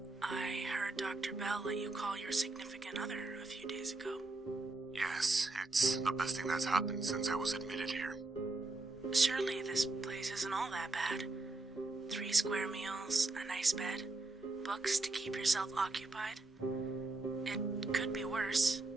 I heard Dr. Bell let you call your significant other a few days ago. Yes, it's the best thing that's happened since I was admitted here. Surely this place isn't all that bad. 3 square meals, a nice bed, books to keep yourself occupied. It could be worse.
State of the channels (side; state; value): left; quieter; 3.2 dB